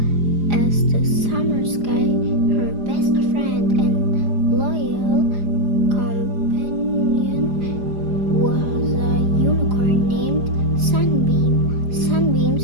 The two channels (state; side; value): late; left; 4.9 ms